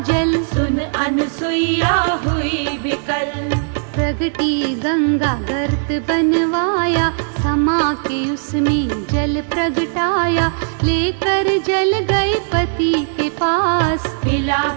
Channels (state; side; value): silent; left; 68 dB below the other